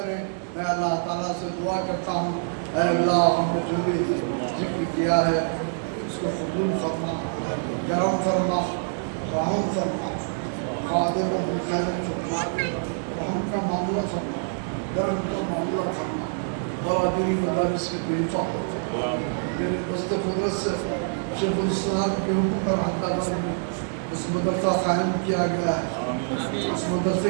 میں اللہ تعالیٰ سے دعا کرتا ہوں، اے اللہ ہم نے جو بھی ذکر کیا ہے اس کو قبول فرما، کرم فرما، رحم فرما، خادم و خیر فرما، رحم کا معاملہ فرما، درم کا معاملہ فرما، برادری مدارس کی بے حفاظت فرما۔ میرے دست قدرت سے شیخ الاسلام کے حکم پر حیدرآباد میں اس مدرسہ قائم کیا گیا ہے، اس مدرسے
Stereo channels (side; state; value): left; silent; 59 dB below the other